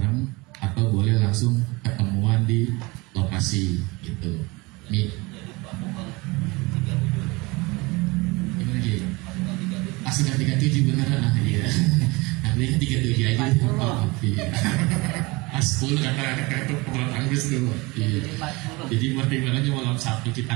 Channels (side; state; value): left; quieter; 24.5 dB